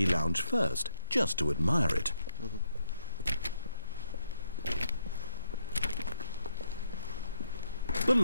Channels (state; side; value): inverted; both; correlation -0.92